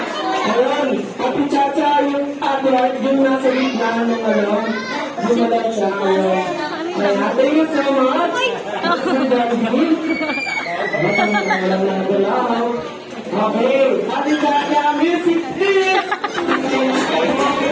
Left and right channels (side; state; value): both; identical; correlation 1.00